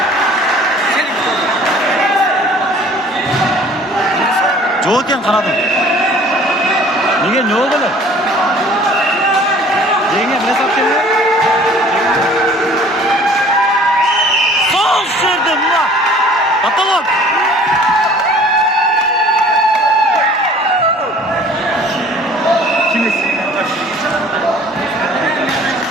Joken kanadım. Nege ne oldu lan? Yenge ne saptın lan? Sol şirdim lan. Atalım. Kimiz?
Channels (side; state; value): both; normal; correlation 0.51